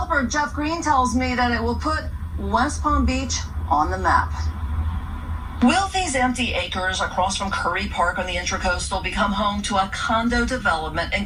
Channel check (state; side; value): identical; both; correlation 1.00